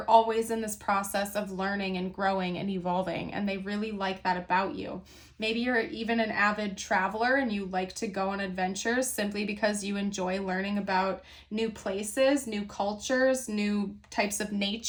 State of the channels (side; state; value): both; identical; correlation 1.00